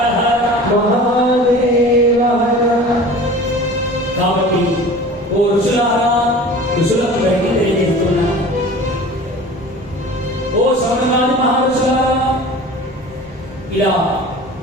ఓ ఋషులారా, ఋషులకు బయట తెలియజేస్తున్నా. ఓ శౌనకాది మహర్షులారా, ఇలా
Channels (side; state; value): both; normal; correlation 0.40